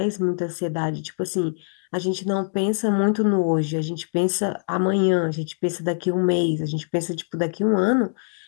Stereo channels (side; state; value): right; silent; digital silence